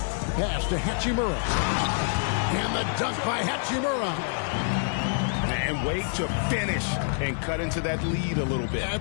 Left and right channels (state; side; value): silent; right; 60 dB below the other